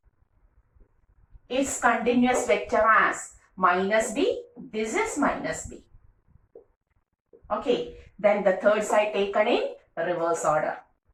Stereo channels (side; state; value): both; identical; correlation 1.00